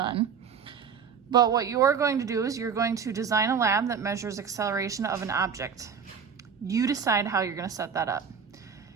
But what you're going to do is you're going to design a lab that measures acceleration of an object. You decide how you're going to set that up.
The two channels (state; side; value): quieter; left; 6.8 dB